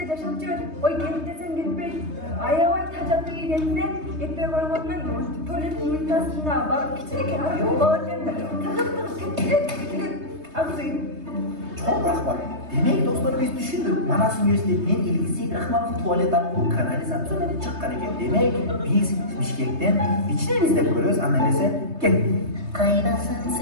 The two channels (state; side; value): late; left; 3.2 ms